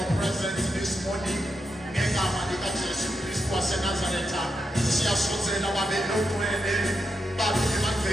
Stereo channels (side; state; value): both; normal; correlation 0.85